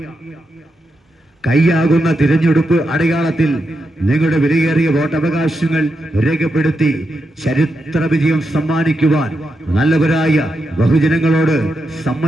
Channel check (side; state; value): both; normal; correlation 0.86